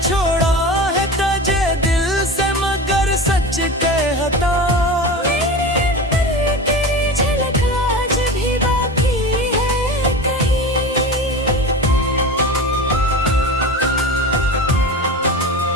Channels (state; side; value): normal; both; correlation 0.29